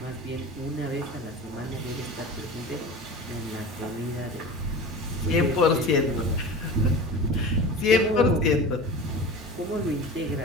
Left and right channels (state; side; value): normal; both; correlation 0.33